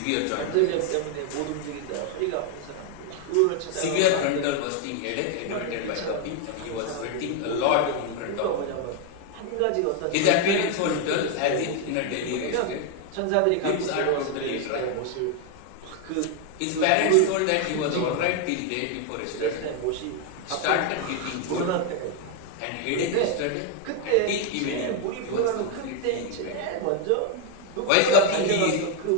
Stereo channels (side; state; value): both; different; correlation 0.01